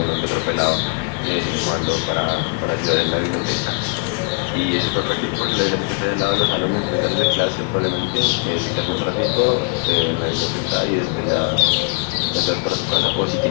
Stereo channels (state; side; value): quieter; right; 35.1 dB